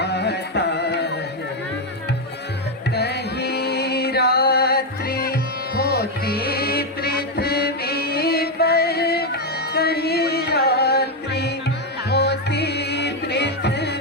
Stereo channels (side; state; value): both; normal; correlation 0.04